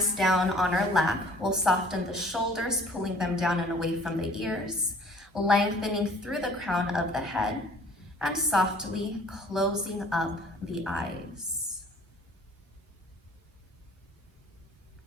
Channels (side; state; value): both; normal; correlation 0.52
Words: down on our lap, we'll soften the shoulders, pulling them down and away from the ears, lengthening through the crown of the head, and softly closing up the eyes.